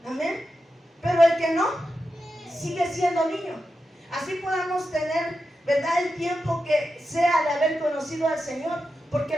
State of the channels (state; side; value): normal; both; correlation 0.89